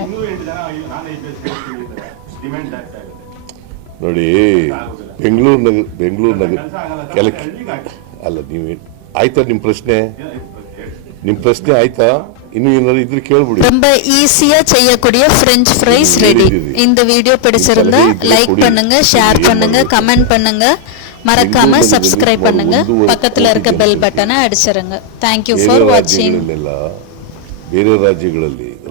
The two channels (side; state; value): both; different; correlation 0.00